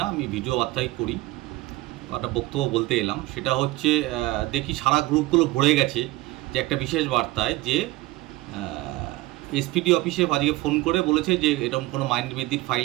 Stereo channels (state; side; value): quieter; left; 18.9 dB